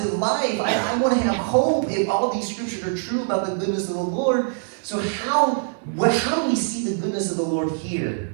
life. I want to have hope if all these scriptures are true about the goodness of the Lord. So how do we see the goodness of the Lord here?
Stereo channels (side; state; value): left; silent; 63 dB below the other